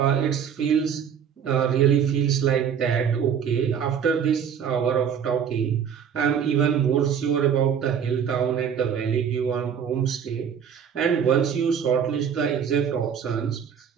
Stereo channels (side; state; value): left; quieter; 7.9 dB